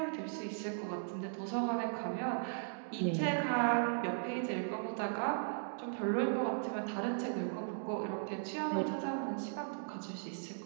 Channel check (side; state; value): left; silent; digital silence